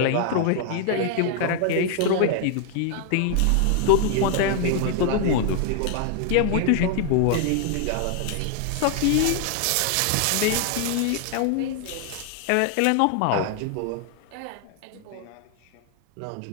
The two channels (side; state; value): both; different; correlation 0.00